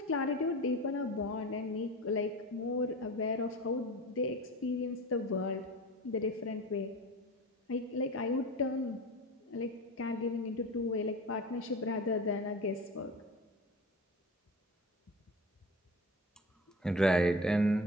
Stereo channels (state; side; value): normal; both; correlation 0.32